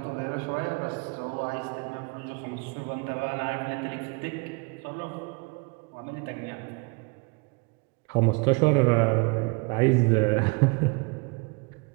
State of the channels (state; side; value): quieter; left; 29.6 dB